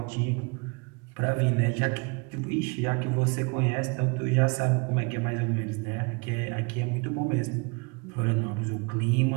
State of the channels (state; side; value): quieter; left; 30.2 dB